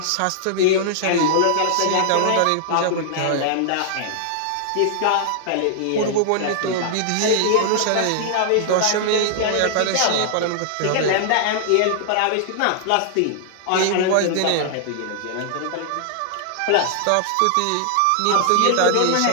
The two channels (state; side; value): different; both; correlation -0.01